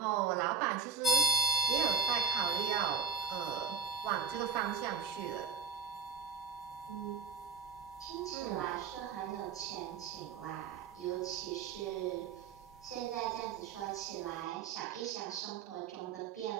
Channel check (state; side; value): quieter; left; 5.5 dB